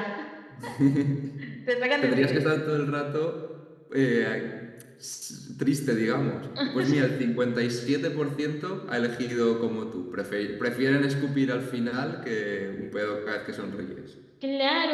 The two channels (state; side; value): identical; both; correlation 1.00